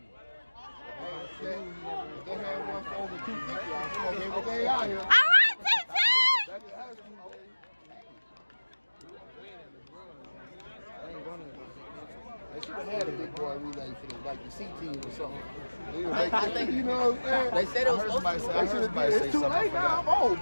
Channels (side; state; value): both; inverted; correlation -1.00